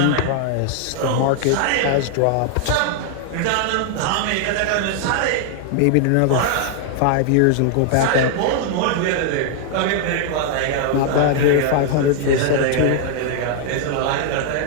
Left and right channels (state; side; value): different; both; correlation 0.00